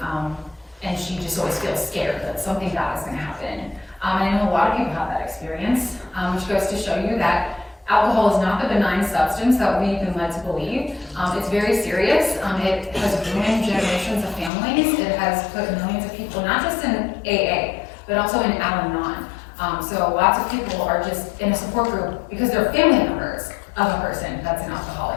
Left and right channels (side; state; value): right; drops out; at 14.5 s